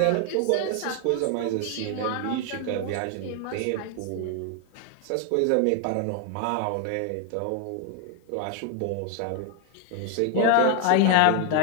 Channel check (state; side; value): different; both; correlation 0.00